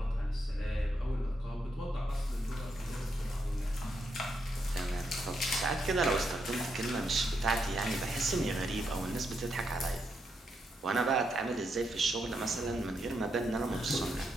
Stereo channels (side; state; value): both; normal; correlation 0.81